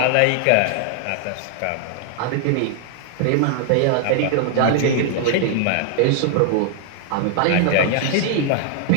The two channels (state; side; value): different; both; correlation 0.00